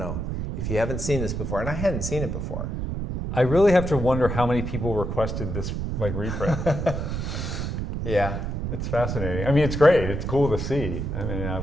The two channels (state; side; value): noise; right; rumble, 3 dB below the sound